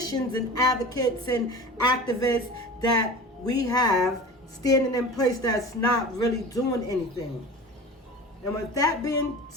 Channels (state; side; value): normal; both; correlation 0.35